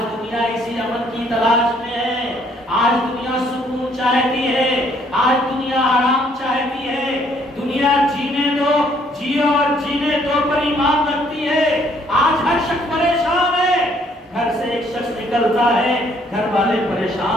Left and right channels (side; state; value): both; normal; correlation 0.65